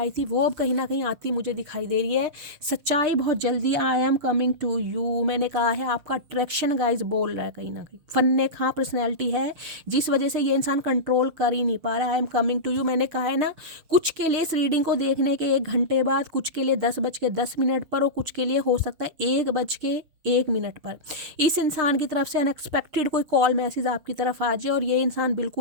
थी वो अब कहीं ना कहीं आती मुझे दिखाई दे रही है। सच्चाई बहुत जल्दी, I am coming to you. मैंने कहा है आपका अट्रैक्शन गाइज बोल रहा है, कहीं ना कहीं फन्ने खां पर्सनैलिटी है जिस वजह से ये इंसान कंट्रोल कर ही नहीं पा रहा है। I am coming to you मैंने कहा है ना, कुछ के लिए इस रीडिंग को देखने के 1 घंटे बाद, कुछ के लिए 10:10 पर और कुछ के लिए हो सकता है 1:01 पर इस इंसान की तरफ से अनएक्सपेक्टेड कोई कॉल मैसेज आपकी तरफ आ जाए और ये इंसान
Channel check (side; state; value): left; late; 6.6 ms